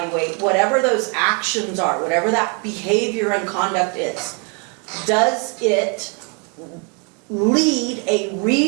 whatever those actions are, whatever that behavior and conduct is. Does it lead a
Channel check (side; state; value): left; quieter; 36.0 dB